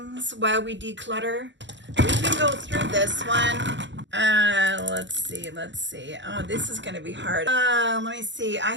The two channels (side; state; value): left; late; 0.53 ms